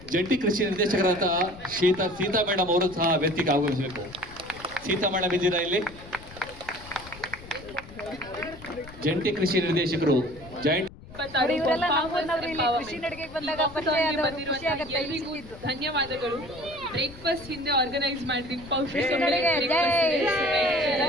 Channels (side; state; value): left; noise; rumble, 18 dB below the sound